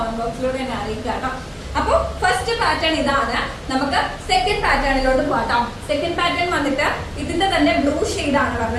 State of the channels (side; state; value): both; identical; correlation 1.00